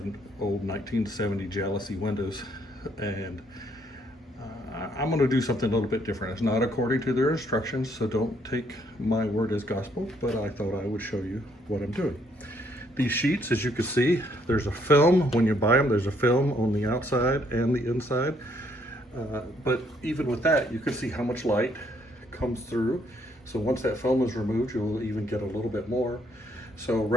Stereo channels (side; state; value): both; normal; correlation 0.68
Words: old 1970 jalousie windows, and I'm going to do something a little bit different. It's not according to their instructions, so don't take my word as gospel, but I thought I would show you what I'm doing. These sheets, as you can see, there's a film. When you buy them, there's a film on the outside and the inside. But even with that, you can see how much light comes through. So once that film is removed, you'll even get a little bit more. So